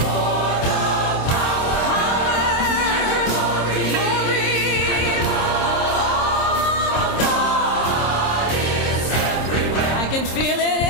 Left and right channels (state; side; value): late; right; 26 ms